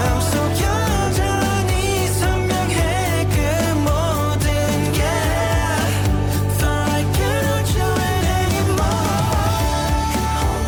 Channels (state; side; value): identical; both; correlation 1.00